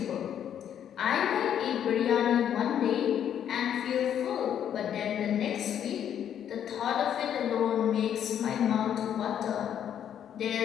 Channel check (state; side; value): quieter; right; 9.5 dB